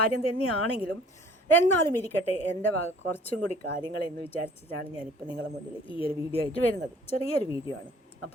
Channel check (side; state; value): both; normal; correlation 0.53